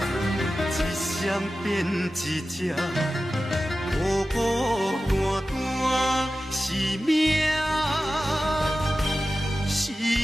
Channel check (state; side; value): normal; both; correlation 0.94